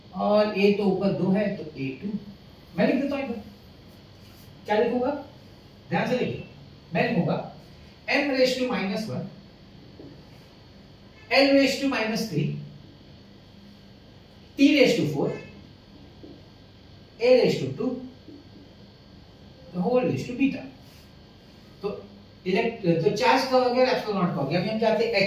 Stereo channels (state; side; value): identical; both; correlation 1.00